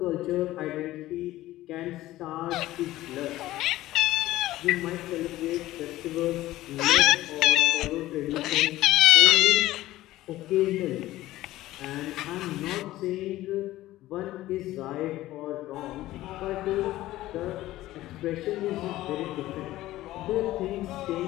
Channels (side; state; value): right; quieter; 15.9 dB